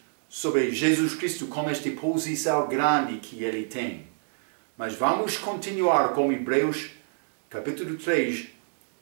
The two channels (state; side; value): silent; left; 60 dB below the other